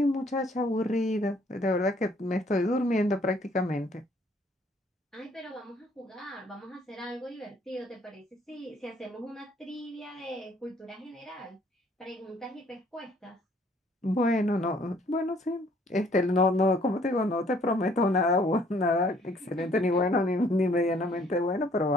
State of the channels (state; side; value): normal; both; correlation 0.62